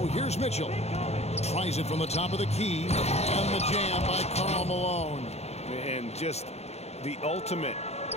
here's Mitchell. Tries it from the top of the key. And the jam by Karl Malone. And just the ultimate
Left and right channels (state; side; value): late; right; 0.31 ms